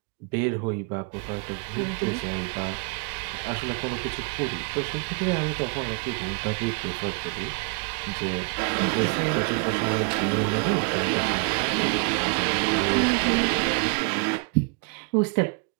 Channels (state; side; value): quieter; left; 33.8 dB